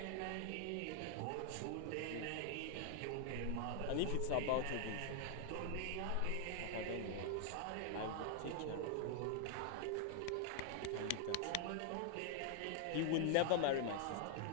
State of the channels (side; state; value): both; different; correlation 0.00